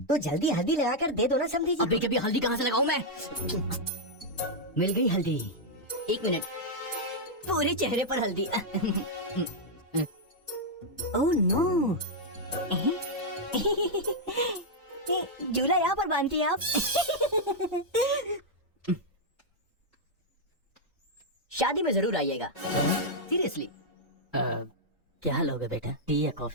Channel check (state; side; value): normal; both; correlation -0.04